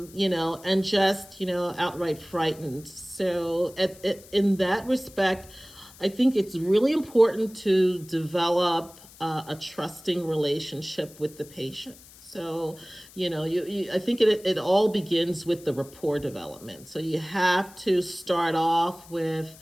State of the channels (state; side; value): noise; left; hiss, 22 dB below the sound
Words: just, outright frightened. So in that respect, I think it's really important to develop a trusting relationship with the patient. So, I think it all begins with the rapport development. So you have to start off with,